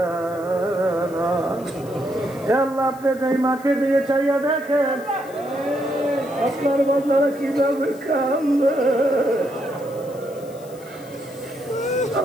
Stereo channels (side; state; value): left; noise; hiss, 23 dB below the sound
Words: না। আল্লাহ আপনি এই মাঠে দিয়ে চাইয়া দেখেন আপনার বাচ্চারা কিভাবে কান্দে।